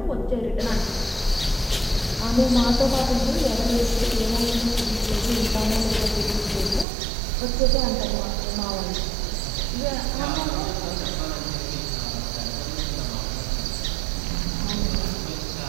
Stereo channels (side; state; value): left; drops out; at 6.9 s